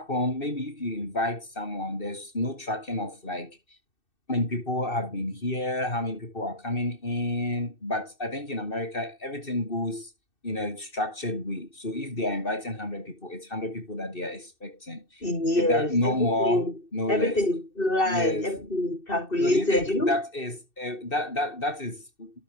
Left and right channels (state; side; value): late; right; 2.6 ms